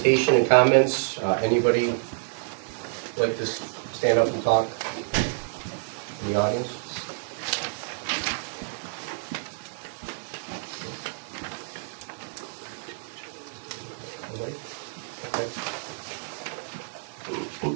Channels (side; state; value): left; silent; digital silence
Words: and comments, anybody like to stand up and talk in the audience? Nobody? Okay.